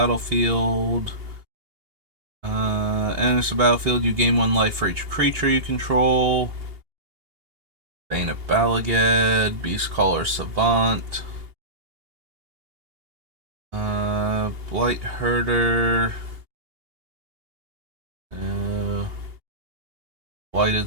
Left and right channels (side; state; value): left; late; 2.8 ms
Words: Enters the battlefield, you gain 1 life for each creature you control. Bane of Balagad, Beastcaller Savant. Blight Herder.